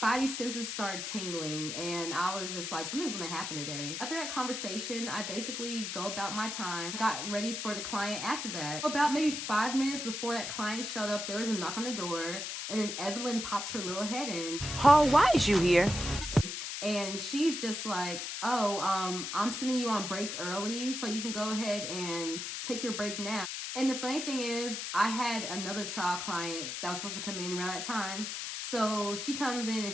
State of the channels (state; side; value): noise; left; hiss, 5 dB below the sound